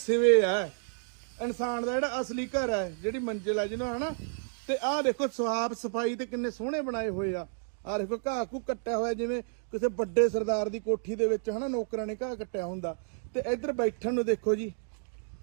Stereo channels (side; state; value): left; silent; digital silence